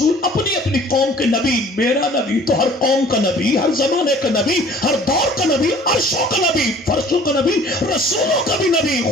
اپنی اپنی قوم کے نبی، میرا نبی تو ہر قوم کا نبی، ہر زمانے کا نبی، ہر دور کا نبی، عرشوں کا نبی، فرشوں کا نبی، رسولوں کا بھی نبی،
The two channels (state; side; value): normal; both; correlation 0.51